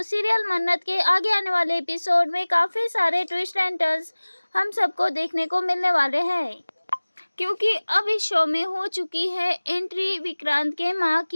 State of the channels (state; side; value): inverted; both; correlation -1.00